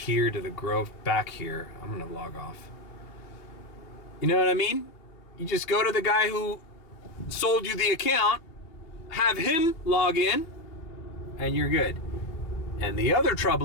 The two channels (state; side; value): late; right; 2.8 ms